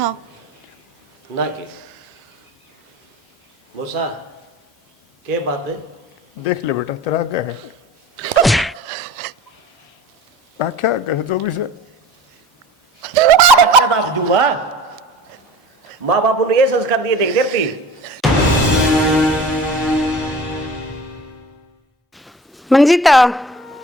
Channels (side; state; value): both; normal; correlation 0.42